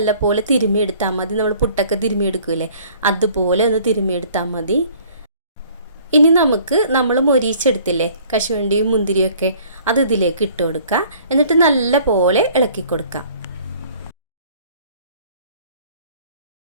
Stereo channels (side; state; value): both; inverted; correlation -0.54